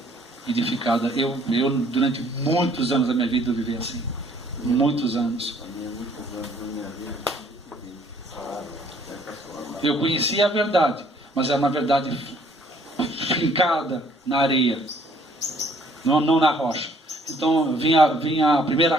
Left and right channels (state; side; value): normal; both; correlation 0.61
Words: edificada. Eu durante muitos anos da minha vida, eu vivi assim. Muitos anos. Eu conhecia a verdade, mas é uma verdade fincada na areia, não na rocha. Então vinha a